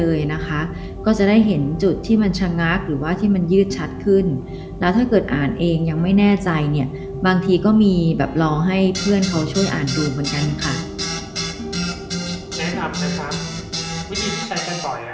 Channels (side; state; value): both; identical; correlation 1.00